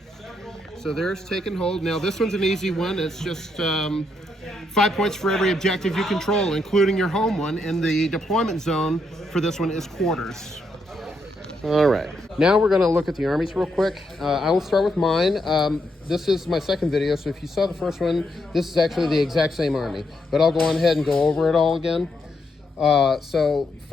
So there's take and hold. Now, this one's an easy one. It's just 5 points for every objective you control, including your home one, and the deployment zone for this one is quarters. All right, now we're going to look at the armies real quick. I will start with mine. This is my second video, so if you saw the first one, this is actually the exact same army, but I'll go on ahead and go over it all again. So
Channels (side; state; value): both; normal; correlation 0.79